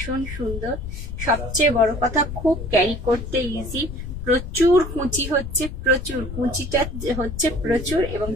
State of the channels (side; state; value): left; noise; rumble, 8 dB below the sound